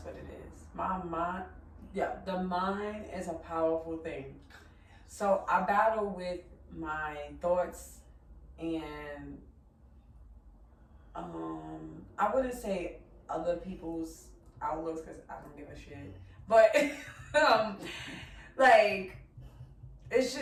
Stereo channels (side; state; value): both; identical; correlation 1.00